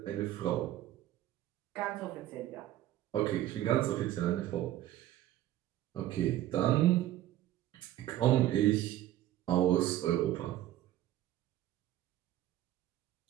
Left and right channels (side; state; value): left; quieter; 13.4 dB